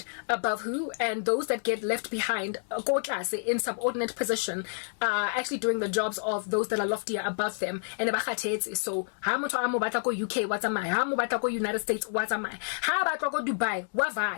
above who, and those that get left behind in subordinate position actually doing the jobs of those that are loftier above them. And so how much UK, what's am I? How much United States, what's am I? How about Dubai?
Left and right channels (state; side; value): silent; right; 59 dB below the other